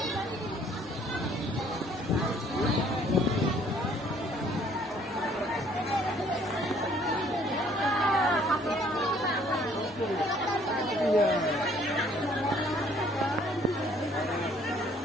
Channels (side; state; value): both; normal; correlation 0.60